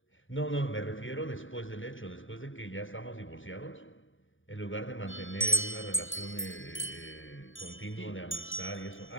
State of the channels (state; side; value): late; right; 0.57 ms